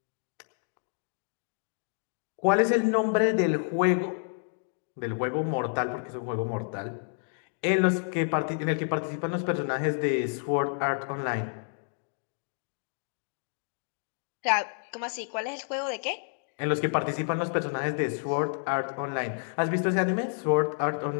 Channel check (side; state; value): right; silent; digital silence